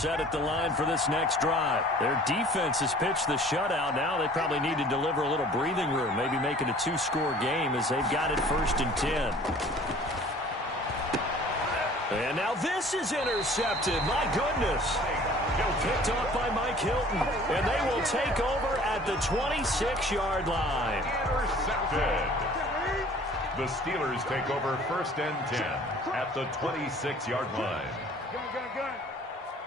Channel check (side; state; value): both; normal; correlation 0.50